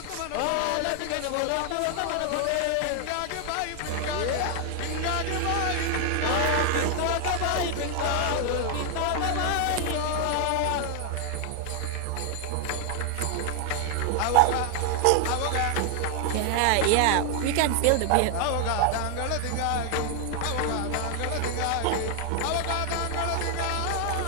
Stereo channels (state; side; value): different; both; correlation 0.00